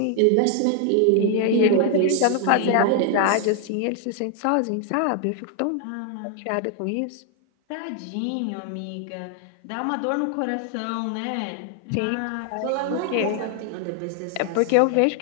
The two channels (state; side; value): different; both; correlation 0.00